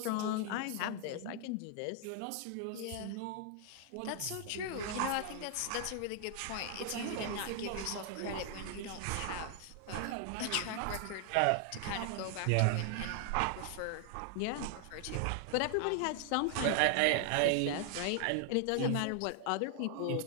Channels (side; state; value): both; different; correlation 0.00